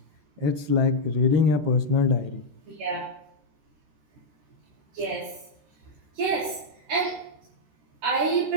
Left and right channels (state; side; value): late; left; 14 ms